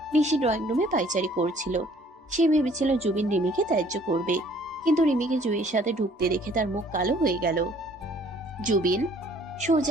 নিশি ড্রয়িং রুমে পাইচারি করছিল। সে ভেবেছিল জুবিন রিমিকে ত্যায্য করবে, কিন্তু রিমিকে জুইয়ের সাথে ঢুকতে দেখে তার মুখ কালো হয়ে গেল। জুবিন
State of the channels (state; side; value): normal; both; correlation 0.58